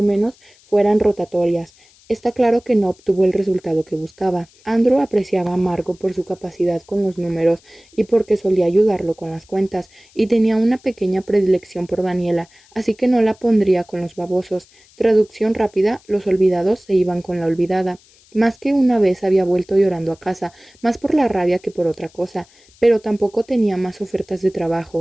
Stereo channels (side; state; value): left; noise; hiss, 29 dB below the sound